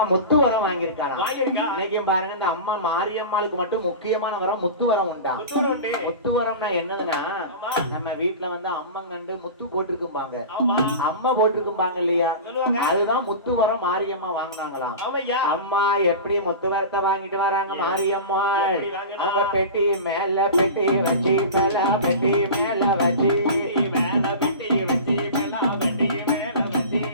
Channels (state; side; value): inverted; both; correlation -0.31